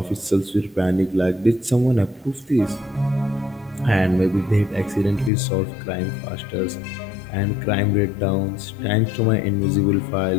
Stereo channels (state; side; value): drops out; right; at 5.3 s